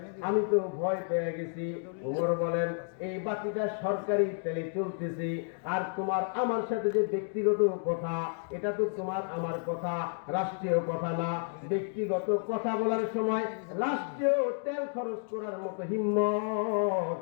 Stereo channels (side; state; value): right; silent; 57 dB below the other